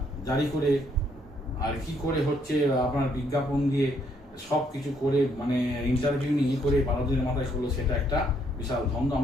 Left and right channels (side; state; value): both; normal; correlation 0.70